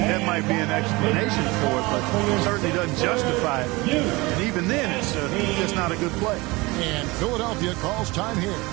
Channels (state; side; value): quieter; left; 23.1 dB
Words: might be an explanation for it, but it certainly doesn't justify it. And even then, it's just not a good play. And Philadelphia calls time here.